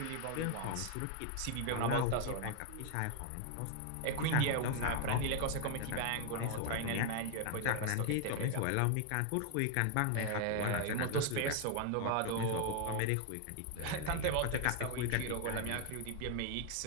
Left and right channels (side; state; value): both; different; correlation 0.00